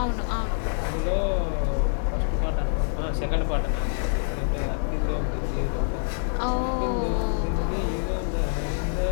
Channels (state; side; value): silent; right; digital silence